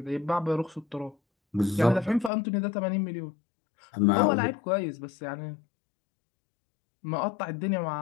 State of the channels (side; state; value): right; drops out; at 2.3 s